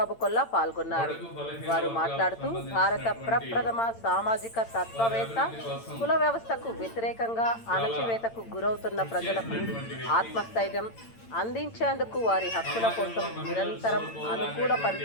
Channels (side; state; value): right; late; 8.8 ms